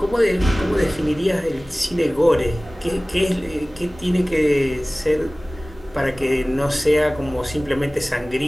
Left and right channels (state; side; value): normal; both; correlation 0.98